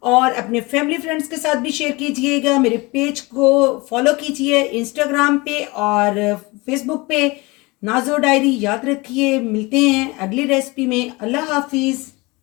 और अपने फैमिली फ्रेंड्स के साथ भी शेयर कीजिएगा। मेरे पेज को फॉलो कीजिए इंस्टाग्राम पे और फेसबुक पे, नाज़ो डायरी। याद रखिए, मिलते हैं अगली रेसिपी में। अल्लाह हाफिज़।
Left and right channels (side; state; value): right; quieter; 24.3 dB